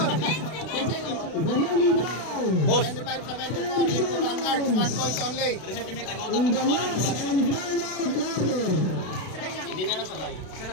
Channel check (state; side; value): late; right; 32 ms